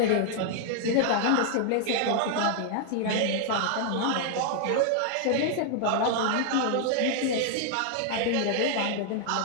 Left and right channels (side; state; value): both; different; correlation 0.00